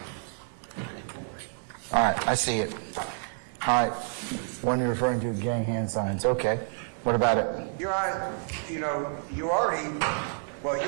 All right, I see it. All right, one you're referring to, gang hand signs. Okay, what about it? Your Honor, you already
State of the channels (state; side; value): silent; left; 59 dB below the other